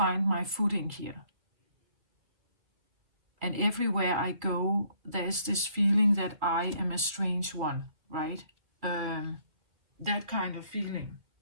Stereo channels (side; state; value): left; late; 2.3 ms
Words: my footing here. And everywhere I go, there's this feeling that I am a strange one, right? That kind of feeling.